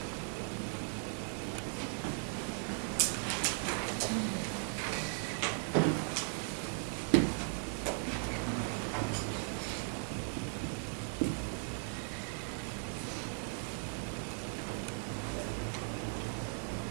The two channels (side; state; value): left; silent; 53 dB below the other